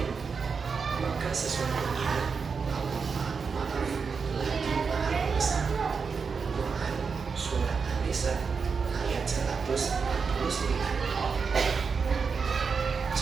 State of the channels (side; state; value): left; quieter; 5.4 dB